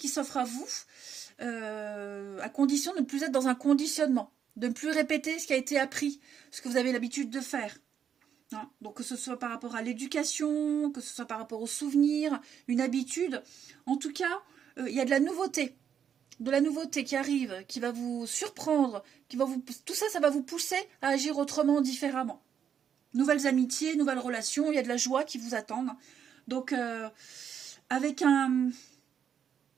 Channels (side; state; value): left; quieter; 8.2 dB